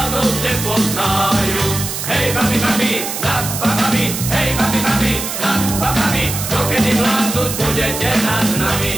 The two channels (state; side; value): noise; right; hiss, 5 dB below the sound